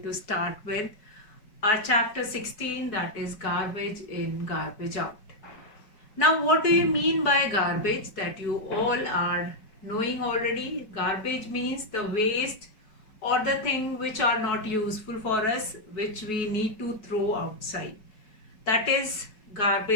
to start with our chapter 16, that is garbage in, garbage out. Now, what do you mean by garbage? That you all are knowing already. Garbage means the waste or the thing which are not useful for us, which we need to throw outside. That is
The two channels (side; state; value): right; late; 4.7 ms